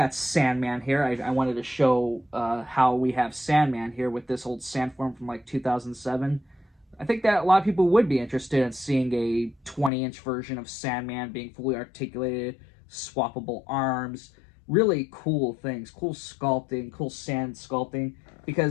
Sandman here. I wanted to show how we have Sandman here with this old Sandform from like 2007. I think that a lot of people would be interested in seeing a 20-inch version of Sandman being fully articulated, swappable arms, really cool things, cool sculpting, cool sand sculpting,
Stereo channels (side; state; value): right; drops out; at 9.9 s